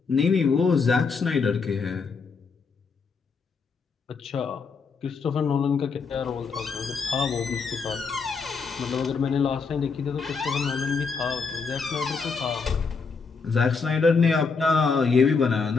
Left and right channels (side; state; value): right; quieter; 5.0 dB